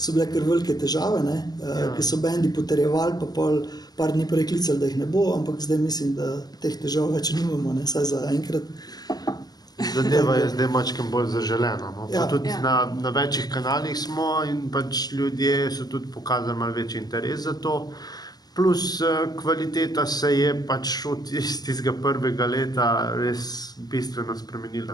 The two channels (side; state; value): right; late; 0.19 ms